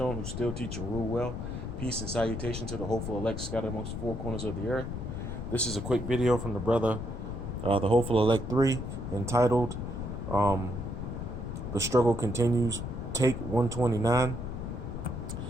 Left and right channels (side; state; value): left; noise; rumble, 5 dB below the sound